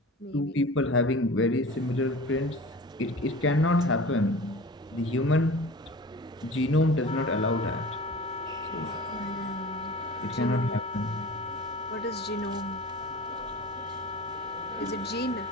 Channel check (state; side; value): normal; both; correlation 0.38